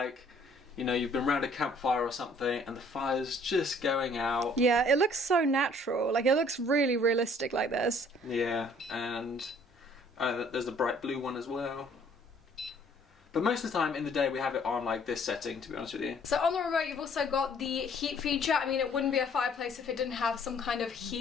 you know, you've been around a campfire or something and the fire's just going out. Yeah, it looks so natural. Like it looks really realistic like this. Yeah, and there's the bright blue one as well. But most of the time in the day we have it on like this setting, to be honest with you. So on the remote you've also got the heat feature. I mean, it wouldn't be a fireplace if it didn't have some kind of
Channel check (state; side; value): normal; both; correlation 0.58